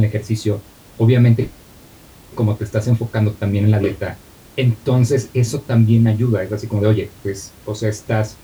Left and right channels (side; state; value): both; identical; correlation 1.00